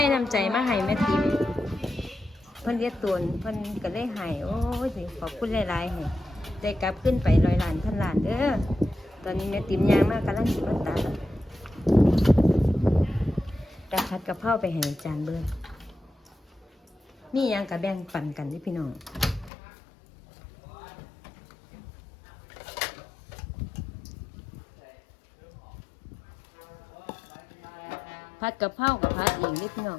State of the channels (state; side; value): drops out; right; at 19.5 s